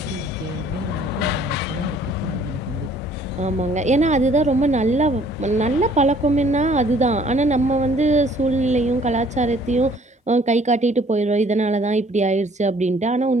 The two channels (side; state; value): both; normal; correlation 0.58